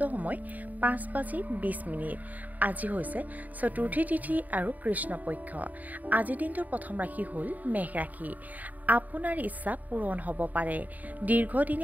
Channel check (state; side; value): late; left; 0.078 ms